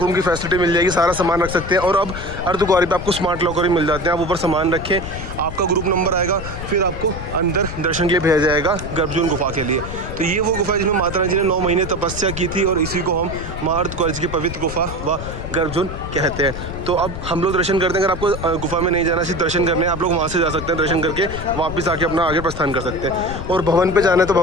रूम की फैसिलिटी मिल जाएगी, सारा सामान रख सकते हैं। और अब अर्धकुंवारी पे आपको स्मार्ट लॉकर भी मिल जाते हैं, आप ऊपर सामान रखें, आपका ग्रुप नंबर आएगा, फिर आपको अंदर दर्शन के लिए भेजा जाएगा गर्भजून गुफा के लिए। तो ये वो गुफा है जिसमें माता रानी जी ने 9 महीने तपस्या की थी, और इसी को हम माँ अर्धकुंवारी की पवित्र गुफा व गर्भजून कहते हैं। तो अब हम लोग दर्शन करते हैं। अगर आपको गुफा में नहीं जाना, सिर्फ दर्शन करने हैं, आप लोग वहाँ से जा सकते हैं, दर्शन करके वापस आके अपना आगे प्रस्थान कर सकते हैं। और भवन पे जाना है तो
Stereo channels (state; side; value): noise; left; rumble, 8 dB below the sound